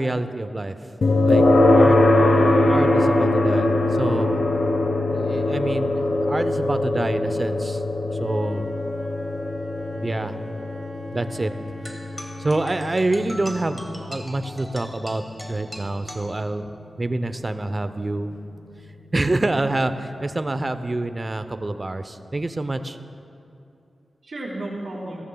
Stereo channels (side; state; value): both; normal; correlation 0.91